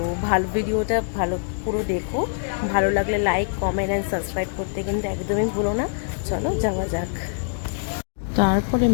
ভিডিওটা পুরো দেখো। ভালো লাগলে লাইক, কমেন্ট অ্যান্ড সাবস্ক্রাইব করতে কিন্তু একদমই ভুলো না। চলো যাওয়া যাক। তারপরে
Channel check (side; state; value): right; silent; digital silence